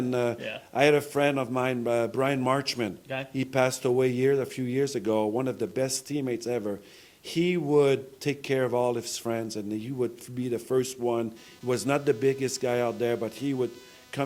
I had a friend of mine, Brian Marchman. Okay. He passed away a few years ago, one of the best teammates ever. He would take care of all his friends, and he would be the first one. He was not the biggest guy out there, but he would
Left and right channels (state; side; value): identical; both; correlation 1.00